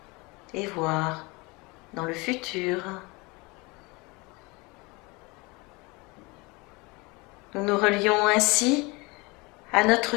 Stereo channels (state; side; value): quieter; right; 25.8 dB